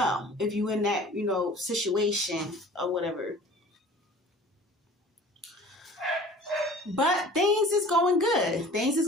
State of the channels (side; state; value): both; normal; correlation 0.46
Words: in that, situation or whatever. But things is going good.